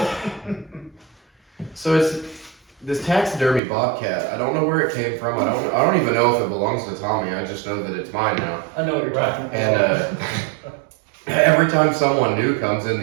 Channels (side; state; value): left; drops out; at 3.6 s